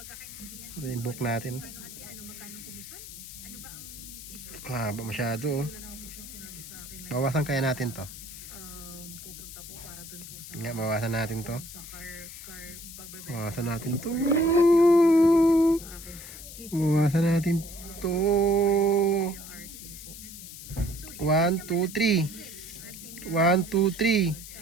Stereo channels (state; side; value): noise; left; hiss, 13 dB below the sound